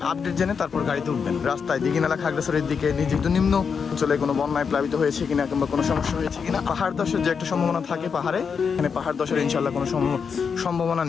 আপডেট জেনে তারপর গাড়িতে উঠবেন। রাস্তায় দিঘিনালা খাগড়াছড়ির দিকে যেহেতু নিম্ন অঞ্চলে কোনো বন্যায় প্লাবিত হয়েছে কিনা কিংবা কোনো সমস্যা হয়েছে কিনা, পাহাড় ধসের যে একটা সম্ভাবনা থাকে পাহাড়ে, এখানে পাহাড় ধসের ইনশাল্লাহ কোনো সম্ভাবনা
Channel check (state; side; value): quieter; right; 6.1 dB